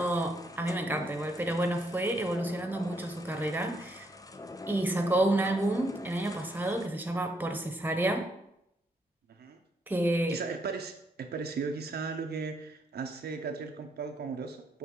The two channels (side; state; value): both; normal; correlation 0.74